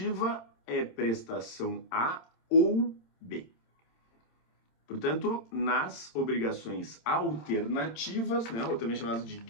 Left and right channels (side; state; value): right; late; 27 ms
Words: é prestação A ou B. Portanto, nas obrigações alternativas, né, ou também chamadas de